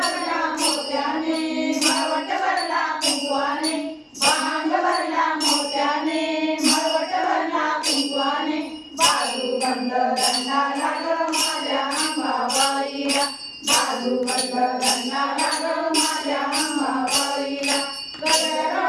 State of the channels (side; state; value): both; identical; correlation 1.00